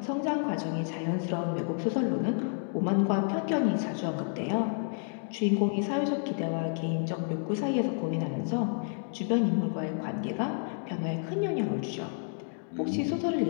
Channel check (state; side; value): silent; right; 57 dB below the other